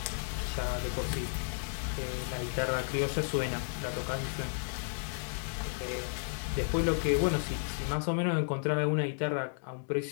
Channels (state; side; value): silent; right; digital silence